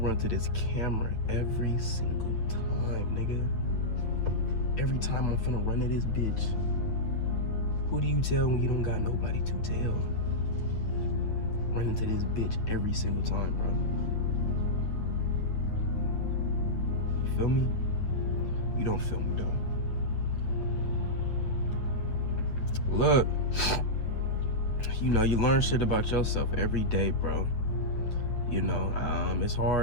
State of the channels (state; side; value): late; right; 8.9 ms